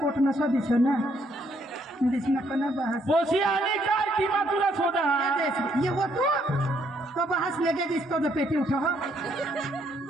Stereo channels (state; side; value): normal; both; correlation 0.70